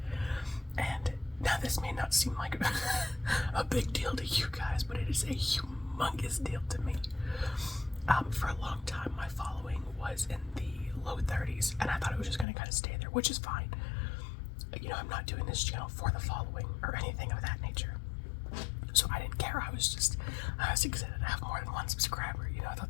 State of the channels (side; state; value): right; drops out; at 12.5 s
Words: And now this may not seem like a big deal to you guys, but it is a humongous deal to me. For a long time, my following was in the low 30s, and I thought it was just going to kind of stay there, which is fine. You know, I'm not doing this channel for the following or anything of that nature, so I didn't care. I was excited to have more than one subscriber. You know, I thought